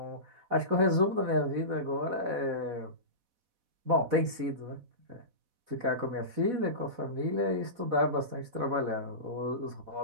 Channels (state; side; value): late; left; 4.1 ms